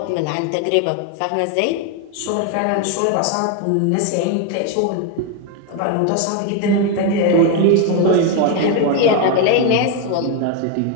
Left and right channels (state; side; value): different; both; correlation 0.01